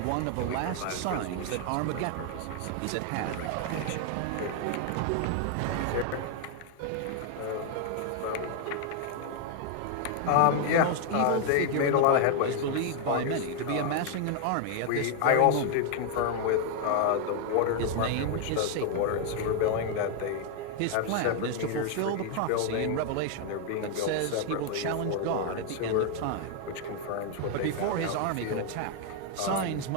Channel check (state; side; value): different; both; correlation 0.00